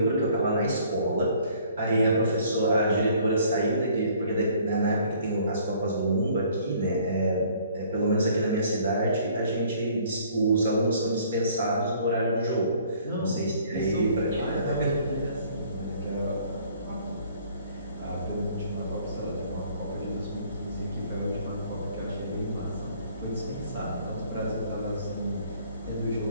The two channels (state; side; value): inverted; both; correlation -0.58